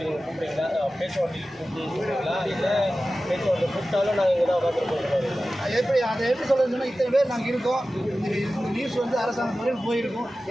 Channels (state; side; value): normal; both; correlation 0.95